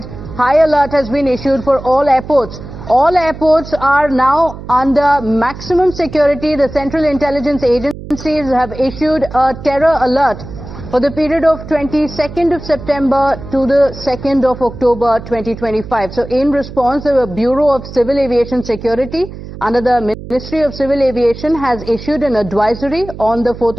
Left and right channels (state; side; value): noise; right; hum, 13 dB below the sound